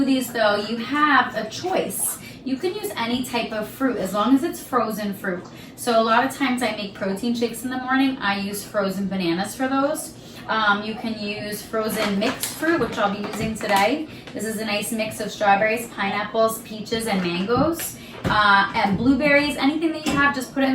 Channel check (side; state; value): both; identical; correlation 1.00